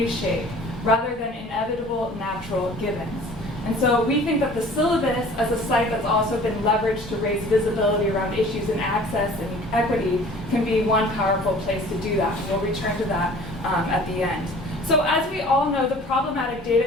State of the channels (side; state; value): both; normal; correlation 0.48